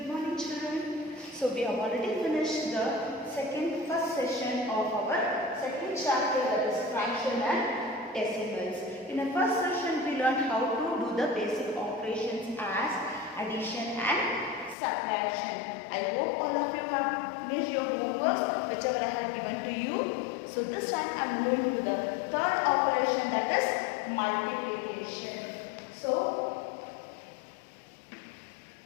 Good morning, children. So we have already finished the first session of our second chapter, that is fraction and decimals. In the first session we learned how to do the basic operations as addition and subtraction. I hope all of you have finished your homework whichever I have given to you. So this time I am going to the third operation, that is multiplication. So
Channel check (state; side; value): drops out; right; at 14.8 s